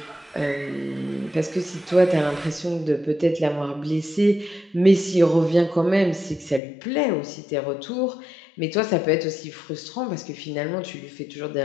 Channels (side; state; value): right; drops out; at 6.6 s